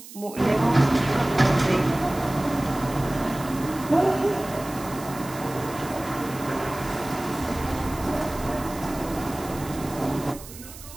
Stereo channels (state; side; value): noise; right; hiss, 16 dB below the sound